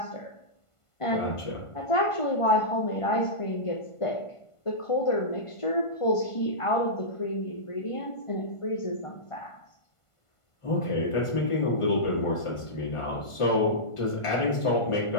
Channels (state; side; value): late; right; 1.5 ms